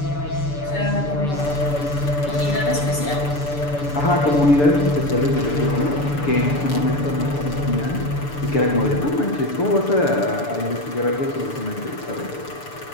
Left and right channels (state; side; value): late; right; 6.9 ms